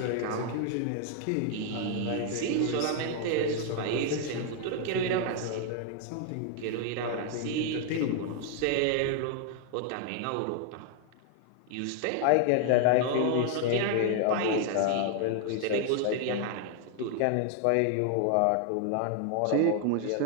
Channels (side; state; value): both; different; correlation 0.00